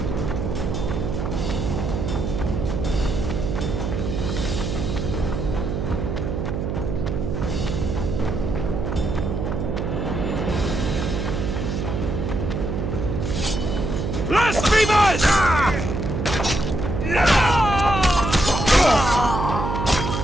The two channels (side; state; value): right; noise; hum, 2 dB below the sound